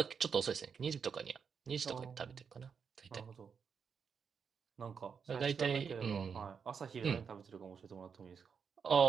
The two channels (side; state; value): left; quieter; 6.4 dB